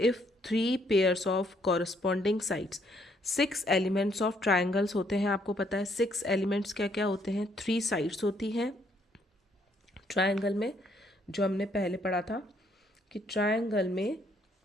3 pairs of corresponding sides. 6 elements of triangles होते हैं, आपको पता है 6 एलिमेंट्स क्या क्या होते हैं? 3 साइड्स होती हैं ट्रायंगल में, जो हमने पहले पढ़ा था कि ट्रायंगल में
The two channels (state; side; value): normal; both; correlation 0.69